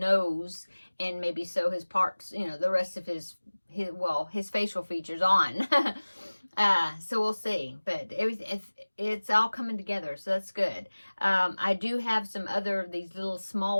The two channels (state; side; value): inverted; both; correlation -1.00